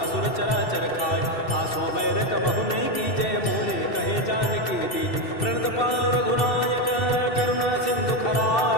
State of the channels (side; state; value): right; late; 2.7 ms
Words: चराचर खाय आसो बैर कबहु नहीं की जय मोरे कहे जान की दीज प्रणत पाल रघुनायक करुणा सिंधु